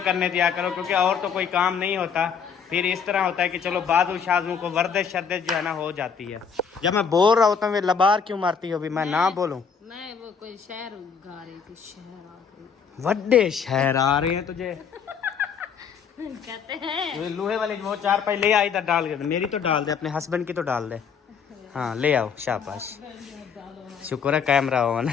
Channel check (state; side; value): quieter; right; 6.5 dB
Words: दिया करो, क्योंकि और तो कोई काम नहीं होता। फिर इस तरह होता है कि चलो बाजू शाजू को वर्दिश शर्दिश जो है ना हो जाती है। जब मैं बोल रहा होता हूँ वे लबार क्यों मारती हो? भी मैं ना बोलूं? मैं वो कोई शहर गा रही थी, शहर आ गई। वड्डे शहर आ रहे हैं तुझे कहते हैं। वो लोहे वाले वो 4 पाई ले आई, इधर डाल के। मेरी तो डाल दे, अपने हस्बैंड की तो डाल दे। हाँ ले आओ, शाबाश। शुक्र है कैमरा ऑन